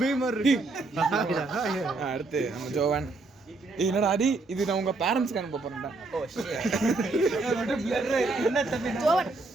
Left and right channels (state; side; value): quieter; left; 3.4 dB